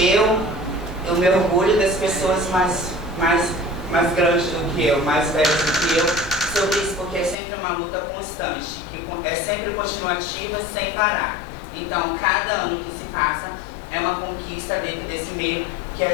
me orgulho das pessoas mais grandes do que eu, mais velhas do que eu, sobre isso, porque é sempre uma luta constante, que é sempre continuativa, sem parar. Então, cada ano que se passa é uma conquista dentro desse meio que a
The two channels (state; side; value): drops out; right; at 7.4 s